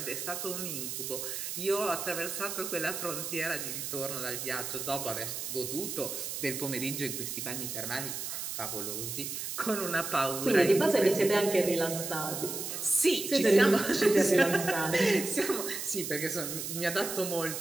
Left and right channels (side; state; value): right; noise; hiss, 5 dB below the sound